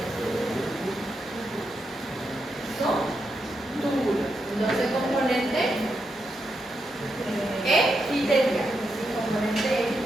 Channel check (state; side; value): normal; both; correlation 0.84